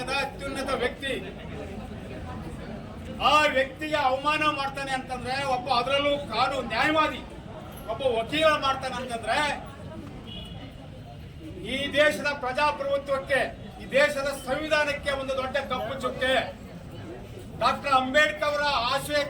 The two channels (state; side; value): identical; both; correlation 1.00